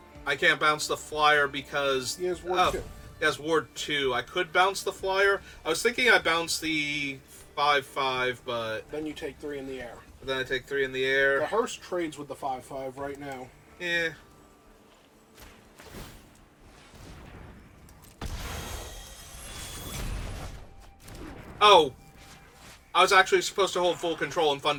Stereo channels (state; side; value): identical; both; correlation 1.00